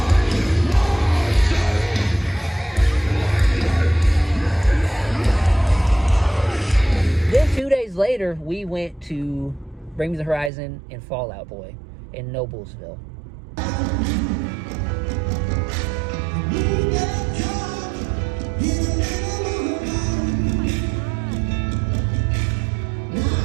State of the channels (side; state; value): left; drops out; at 10.5 s